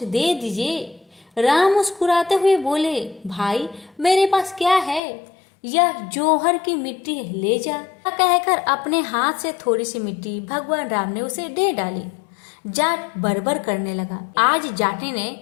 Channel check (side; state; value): right; drops out; at 5.0 s